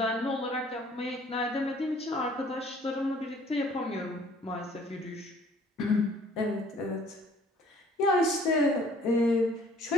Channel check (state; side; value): normal; both; correlation 0.56